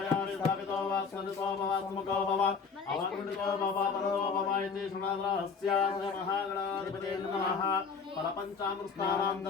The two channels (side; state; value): right; quieter; 5.4 dB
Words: स्थापितो वा स्मृतो वा स्मुखो भव अवकुण्डितो भव परो भव इति शृणुरहस्यास्य महागणाधिपते नमः फलपञ्चामृतानां